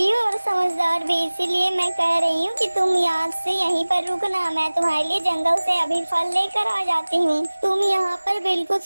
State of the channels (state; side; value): inverted; both; correlation -1.00